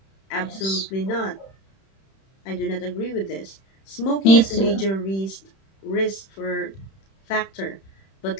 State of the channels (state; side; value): late; right; 31 ms